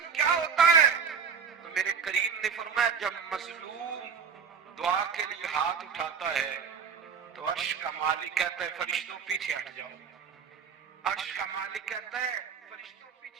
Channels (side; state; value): left; quieter; 6.5 dB